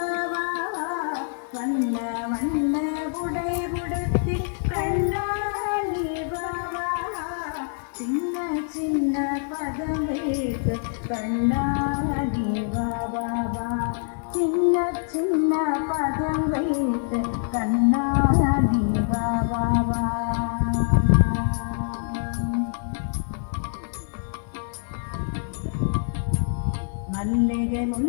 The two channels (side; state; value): right; silent; digital silence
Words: வா வா. வண்ண வண்ண உடை உடுத்தி கண்ணாடி வா வா வா. சின்ன சின்ன பதம் வைத்து கண்ணாடி வா வா வா. சின்ன சின்ன பதம் வைத்து கண்ணாடி வா வா வா. மல்லிகை